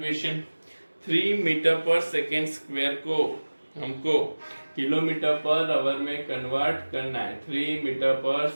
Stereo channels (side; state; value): both; inverted; correlation -1.00